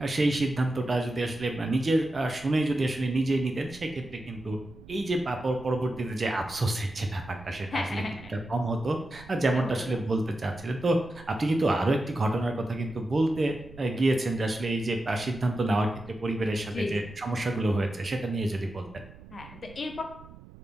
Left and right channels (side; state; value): right; noise; rumble, 19 dB below the sound